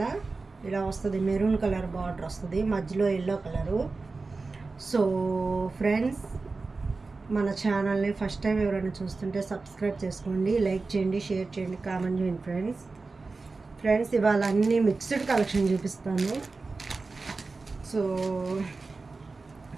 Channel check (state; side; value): quieter; left; 3.9 dB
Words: ఇలా వస్తుంది. మెరూన్ కలర్ బార్డర్ వస్తుంది, మధ్యలో ఎల్లో కలరు. సో ఫ్రెండ్స్, మన ఛానల్ని ఫస్ట్ టైం ఎవరైనా చూస్తుంటే సబ్స్క్రైబ్ చేసుకోండి, లైక్ చేయండి, షేర్ చేయండి, కామెంట్ చేయండి. ఫ్రెండ్స్ ఇవాళ అన్నీ మిక్స్డ్ కలెక్షన్ చూపిస్తాను. సో